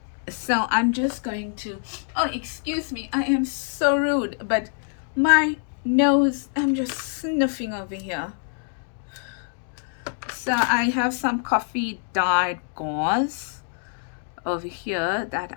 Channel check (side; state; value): right; silent; 62 dB below the other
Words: So I'm just going to, oh, excuse me, I am so rude, but my nose, I'm just sniffing over here. So I have some coffee dyed gauze over here